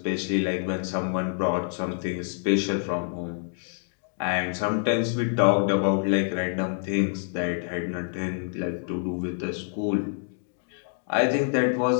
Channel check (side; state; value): right; silent; 59 dB below the other